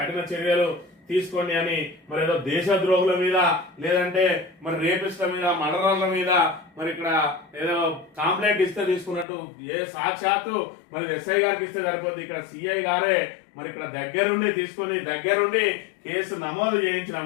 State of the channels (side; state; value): right; drops out; at 9.2 s